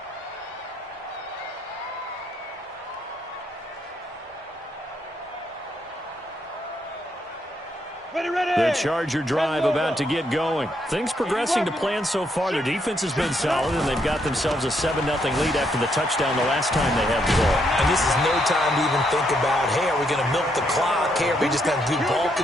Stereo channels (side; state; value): both; normal; correlation 0.75